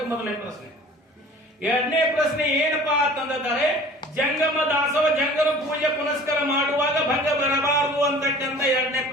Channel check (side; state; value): both; normal; correlation 0.45